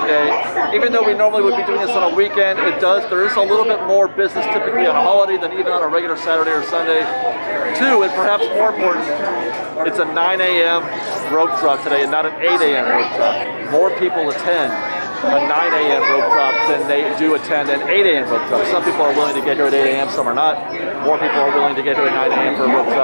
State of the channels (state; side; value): inverted; both; correlation -1.00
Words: Day. Even though we normally would be doing this on a weekend, there is a little bit more business typically on a holiday than even on a regular Saturday or Sunday. 2, and perhaps more important, it's a 9 a.m. rope drop today and not an 8 a.m. rope drop. More people attend a 9 a.m. rope drop than they do attend an 8 a.m. rope drop. Some people are willing to get here at 8 a.m., some are not. More people are willing to get here at 9 a.m. for a rope